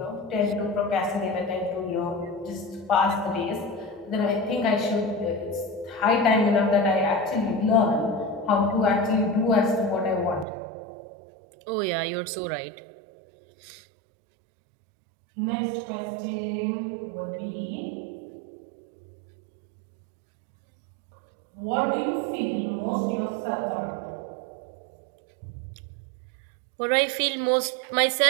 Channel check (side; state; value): left; drops out; at 10.5 s